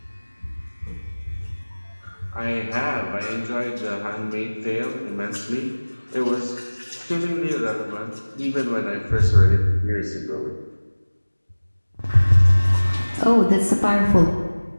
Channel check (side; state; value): both; inverted; correlation -1.00